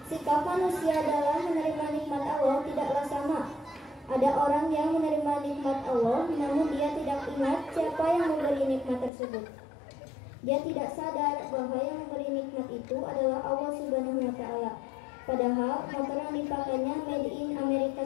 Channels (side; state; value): right; drops out; at 9.1 s